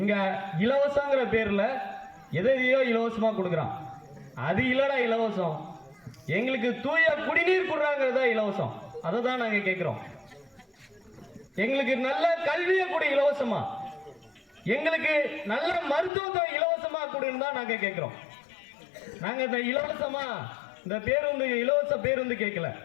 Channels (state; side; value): drops out; right; at 16.1 s